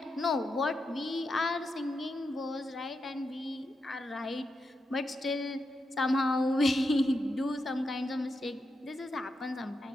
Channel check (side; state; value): both; normal; correlation 0.86